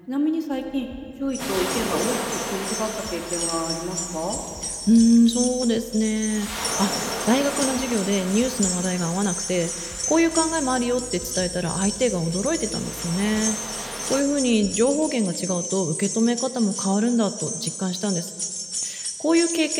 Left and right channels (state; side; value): identical; both; correlation 1.00